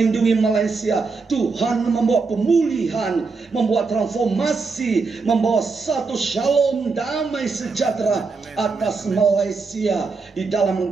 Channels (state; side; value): quieter; left; 4.4 dB